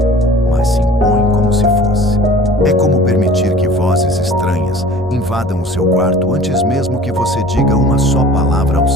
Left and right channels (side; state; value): both; normal; correlation 0.45